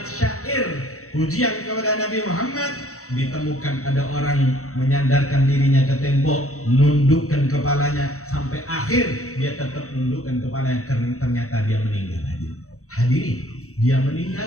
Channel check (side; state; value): right; late; 0.64 ms